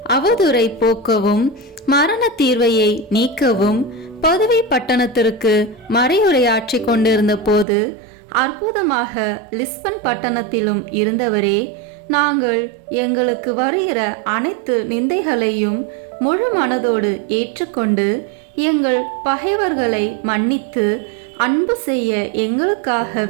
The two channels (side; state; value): left; drops out; at 7.7 s